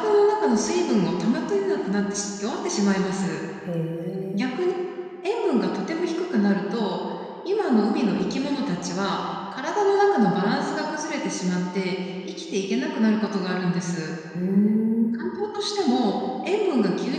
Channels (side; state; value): both; identical; correlation 1.00